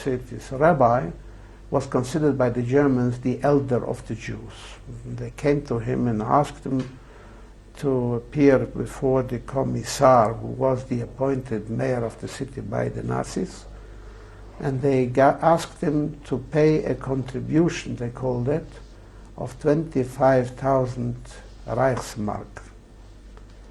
city's rabbi, was considered by the Germans the elder of the Jews. They came to him and asked him to appear before the commissar, who was the appointed mayor of the city by the Nazis, and they asked him to pay a contribution, they called it, of 25,000 Reichsmark.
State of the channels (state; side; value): identical; both; correlation 1.00